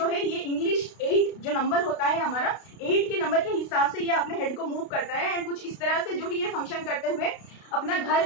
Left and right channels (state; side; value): late; right; 32 ms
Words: है ये इंग्लिश 8 जो नंबर होता है हमारा, 8 के नंबर के हिसाब से ये अपने हेड को मूव करता है एंड कुछ इस तरह से जो है ये फंक्शन करते हुए अपना घर